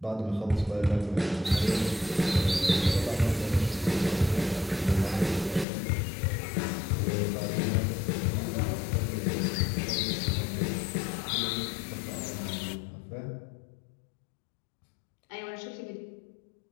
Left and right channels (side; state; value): right; drops out; at 5.7 s